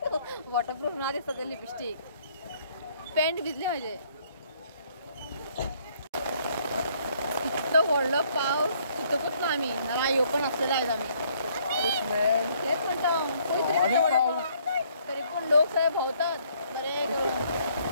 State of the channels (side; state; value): both; inverted; correlation -0.65